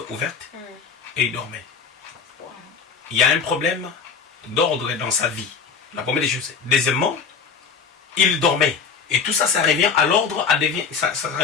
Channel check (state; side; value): quieter; right; 5.9 dB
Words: ouverte, et il dormait. Il y a un problème d'ordre dans sa vie. La première des choses. Deuxièmement, il dormait. Et tout ça, ça revient à l'ordre, ça